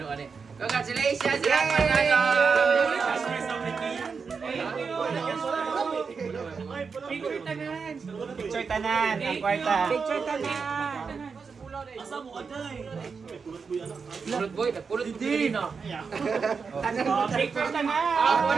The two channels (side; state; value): left; quieter; 5.4 dB